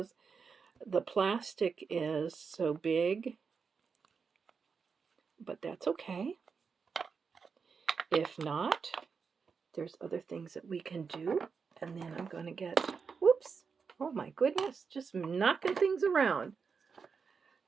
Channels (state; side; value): quieter; left; 5.6 dB